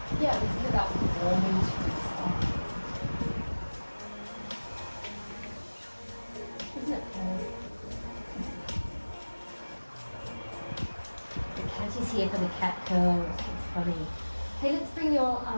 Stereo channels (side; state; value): both; inverted; correlation -1.00